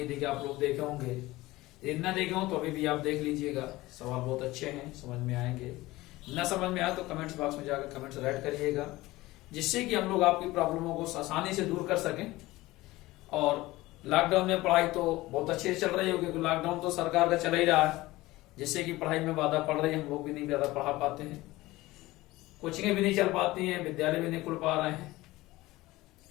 है कि आप लोग देखे होंगे। यदि ना देखे हो तो अभी भी आप देख लीजिएगा। सवाल बहुत अच्छे हैं, समझ में आएंगे। ना समझ में आए तो कमेंट्स बॉक्स में जाकर कमेंट्स राइट करिएगा, जिससे कि हम लोग आपकी प्रॉब्लमों को आसानी से दूर कर सकें। और लॉकडाउन में पढ़ाई तो बहुत अच्छे से चल रही होगी, क्योंकि लॉकडाउन तो सरकार का चल ही रहा है, जिससे कि पढ़ाई में बाधा पड़ रही है। हम लोग भी नहीं ज्यादा पढ़ा पाते हैं, कोचिंगें भी नहीं चल पाती हैं, विद्यालय भी नहीं खुल पा रहे हैं।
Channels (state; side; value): quieter; right; 18.9 dB